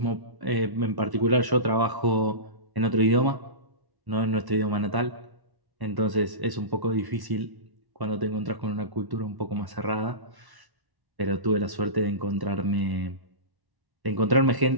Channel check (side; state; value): left; late; 1.1 ms